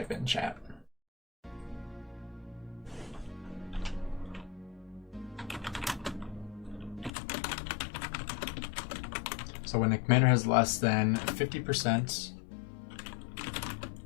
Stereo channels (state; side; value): drops out; right; at 7.1 s